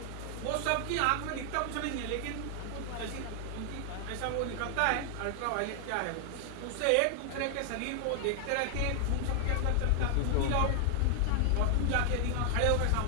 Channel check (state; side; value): different; both; correlation 0.00